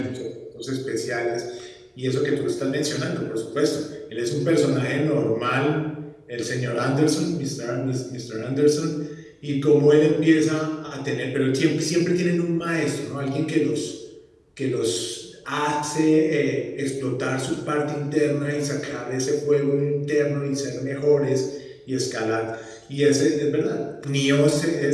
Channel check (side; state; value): both; identical; correlation 1.00